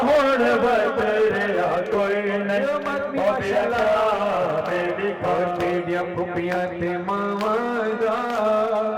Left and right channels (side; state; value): both; identical; correlation 1.00